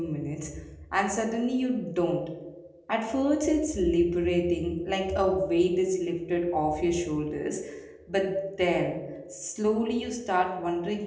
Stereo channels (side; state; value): both; identical; correlation 1.00